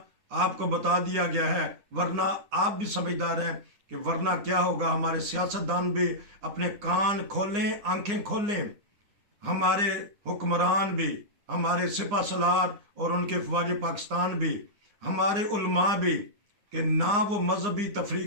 آپ کو بتا دیا گیا ہے، ورنہ آپ بھی سمجھدار ہیں کہ ورنہ کیا ہوگا. ہمارے سیاستدان بھی اپنے کان کھولیں، آنکھیں کھولیں. ہمارے حکمران بھی، ہمارے سپہ سالار اور ان کے فوج پاکستان بھی، ہمارے علماء بھی، کہ نہ وہ مذہبی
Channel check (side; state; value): left; late; 9.8 ms